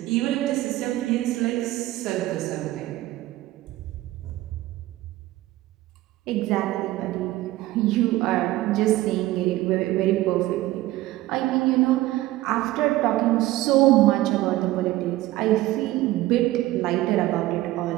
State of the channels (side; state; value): left; quieter; 16.7 dB